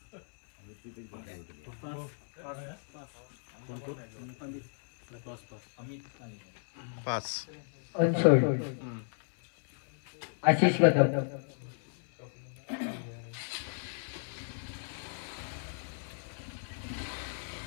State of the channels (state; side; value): silent; right; 55 dB below the other